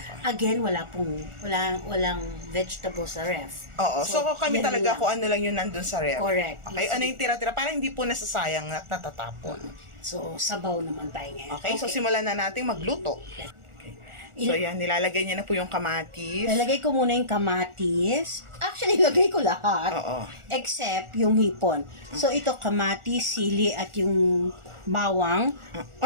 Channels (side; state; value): left; late; 1.4 ms